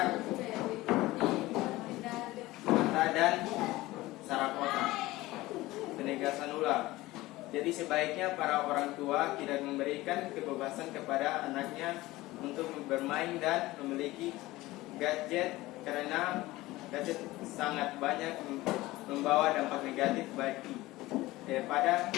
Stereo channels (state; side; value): quieter; right; 18.6 dB